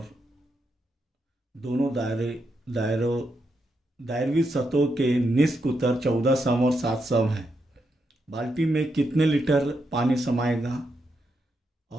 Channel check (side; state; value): both; normal; correlation 0.83